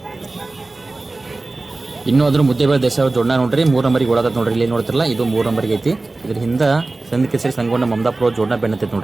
ಇನ್ನೂ ಅದ್ರ ಮುದ್ದೇಬೇಳ ದೇಸಾಯಿ ಜೋಡನ ನೋಡ್ರಿ 3 ನಂಬರಿಗೆ ಓಡಾಕತ್ ನೋಡ್ರಿ ಇಲ್ಲಿ ನೋಡ್ತಿರಲ್ಲ ಇದು 3 ನಂಬರಿಗೆ ಐತಿ ಇದ್ರ ಹಿಂದ ಸಂದ್ ಕೇಸರಿ ಸಂಗೊಂಡ ಮಮದಾಪುರ ಜೋಡನ ಬೆನ್ನತೈತಿ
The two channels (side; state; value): left; quieter; 3.2 dB